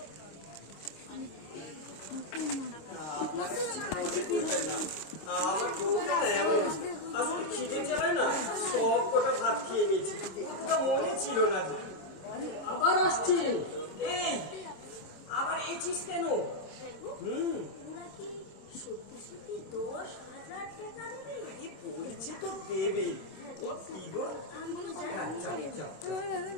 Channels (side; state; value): right; late; 26 ms